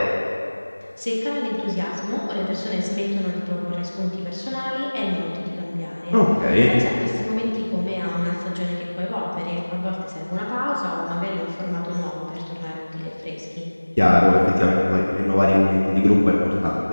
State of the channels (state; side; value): inverted; both; correlation -1.00